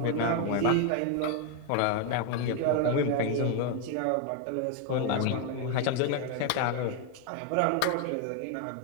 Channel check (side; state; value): both; different; correlation 0.00